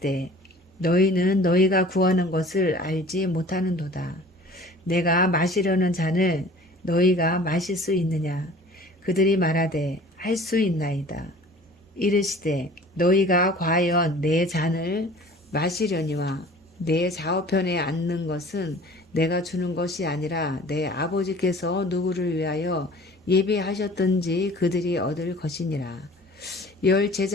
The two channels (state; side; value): normal; both; correlation 0.46